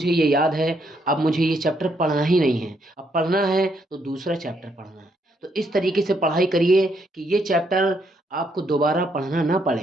ये याद है, अब मुझे ये चैप्टर पढ़ना ही नहीं है, अब पढ़ना है तो दूसरा चैप्टर पढ़ना है। तो इस तरीके से पढ़ाई करिए कि ये चैप्टर आपको दोबारा पढ़ना ना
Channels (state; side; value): normal; both; correlation 0.74